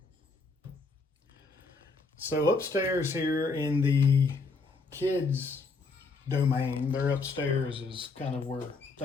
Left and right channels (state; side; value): quieter; right; 4.0 dB